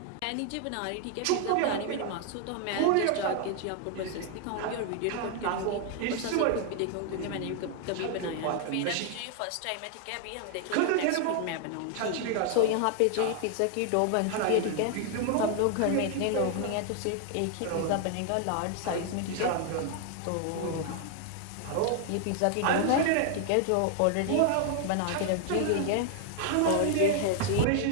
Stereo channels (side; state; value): both; different; correlation 0.00